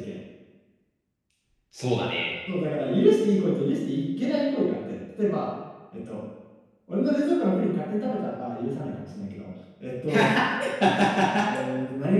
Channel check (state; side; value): identical; both; correlation 1.00